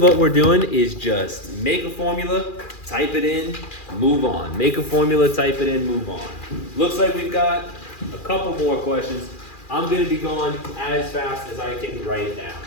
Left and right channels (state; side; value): late; right; 2.4 ms